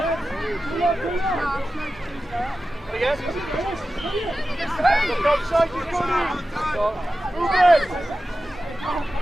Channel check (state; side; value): normal; both; correlation 0.93